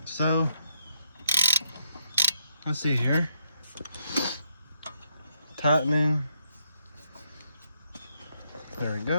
So let's see here. Tightening. There we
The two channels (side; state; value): both; inverted; correlation -0.76